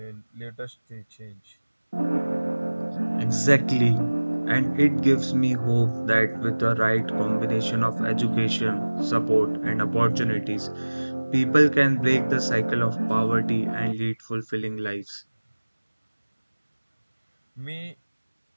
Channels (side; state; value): both; inverted; correlation -1.00